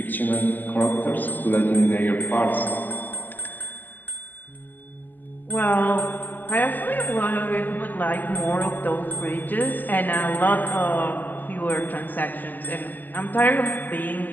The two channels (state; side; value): late; right; 0.086 ms